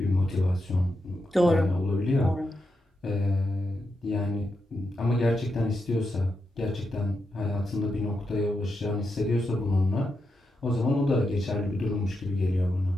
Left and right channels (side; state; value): both; normal; correlation 0.86